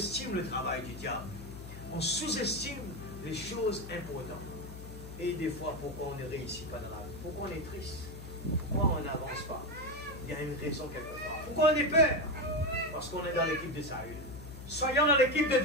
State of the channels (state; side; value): noise; left; hum, 12 dB below the sound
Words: le travail du diable. On sous-estime les choses importantes. Et des fois, pourquoi on ne réussit pas dans la vie? Pourquoi on est triste? Pourquoi on n'avance pas? Il y a une raison quelque part. Pourquoi on est peur? Parce qu'on est dans l'équipe de Saül. Soyons dans l'équipe de